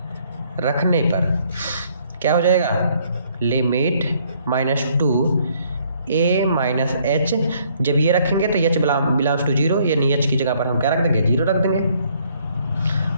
रखने पर क्या हो जाएगा, लिमिट -2 a माइनस h, जब ये रखेंगे तो h बिलोंग्स टू 0, यानी h की जगह पर हम क्या रख देंगे, 0 रख देंगे,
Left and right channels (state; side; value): inverted; both; correlation -0.65